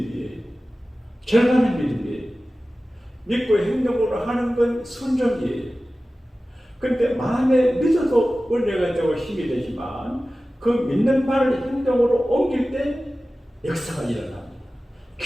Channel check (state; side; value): normal; both; correlation 0.96